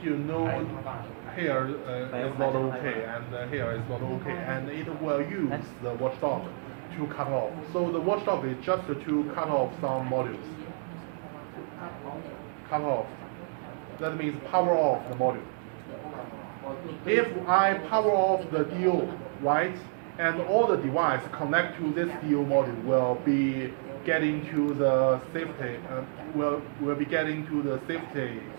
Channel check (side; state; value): left; silent; digital silence